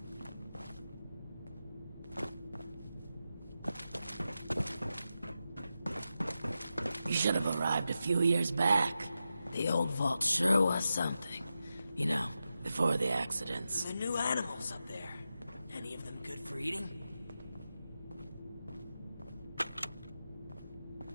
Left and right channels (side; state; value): both; inverted; correlation -0.90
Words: You should have arrived a few years back. The old vault sure was something. You know, before the accidents. The new animals up there. Any of them good for eating?